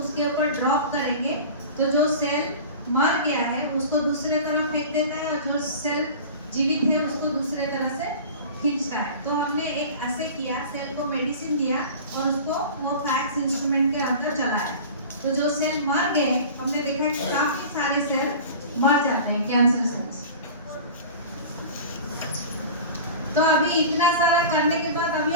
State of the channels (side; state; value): both; inverted; correlation -0.37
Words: ऊपर ड्रॉप करेंगे तो जो सेल मर गया है उसको दूसरे तरफ फेंक देता है और जो सेल जीवित है उसको दूसरे तरह से खींचता है। तो हमने एक ऐसे किया, सेल को मेडिसिन दिया और उसको वो फैक्स इंस्ट्रूमेंट के अंदर चलाया। तो जो सेल मर गए, हमने देखा कि काफी सारे सेल मर जाते हैं, कैंसर सेल्स। तो अभी इतना सारा करने के बाद अभी